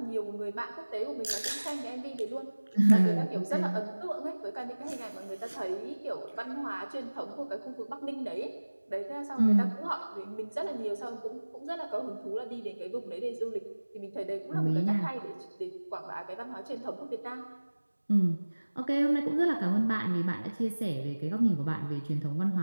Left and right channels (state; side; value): inverted; both; correlation -1.00